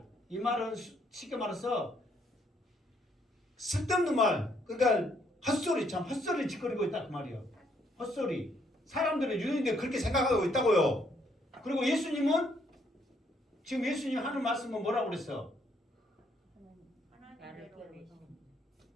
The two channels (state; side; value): normal; both; correlation 0.70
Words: 이 말은 쉽게 말해서 쓸데없는 말. 그러니까 헛소리 참 헛소리 짓거리고 있다 그 말이에요. 헛소리. 사람들은 유대인들이 그렇게 생각하고 있다고요. 그리고 예수님은 지금 예수님 하는 말씀은 뭐라고 그랬어?